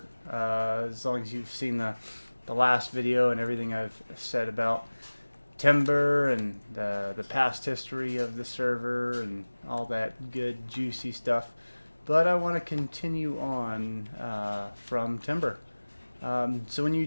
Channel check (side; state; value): both; inverted; correlation -1.00